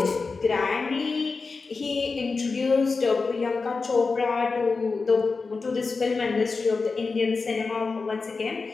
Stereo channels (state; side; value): quieter; right; 4.3 dB